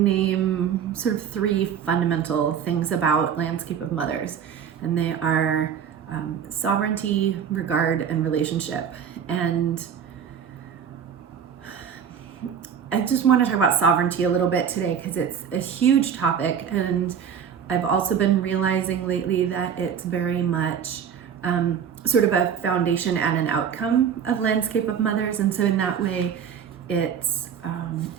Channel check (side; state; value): left; quieter; 7.9 dB